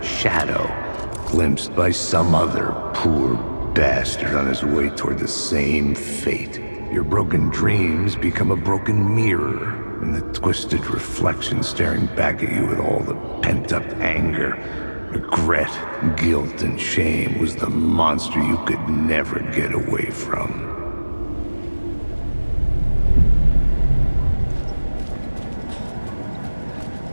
shadow, glimpsed by some other poor bastard on his way toward the same fate. Your broken dreams become a broken mirror, and the twisted reflection staring back at you with all the pent-up anger, regret, guilt, and shame was the monster you could never get away from.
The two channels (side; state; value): both; inverted; correlation -1.00